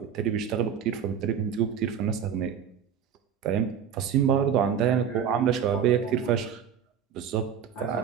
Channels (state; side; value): quieter; left; 8.0 dB